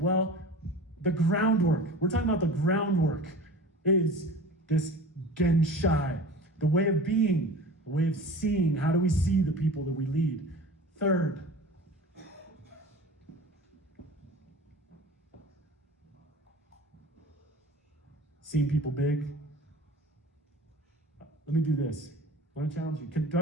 the groundwork, we're talking about the groundwork, is this Genshai, the way of being, the way of seeing. How do we see the people that we lead? Third, seeing people big. Let me do this. I want to challenge you. Do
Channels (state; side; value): normal; both; correlation 0.38